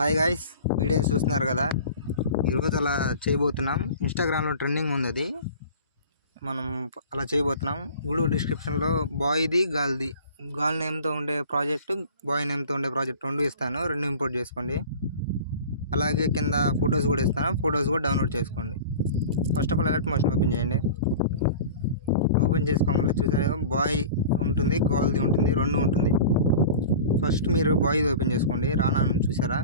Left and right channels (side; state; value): both; inverted; correlation -0.39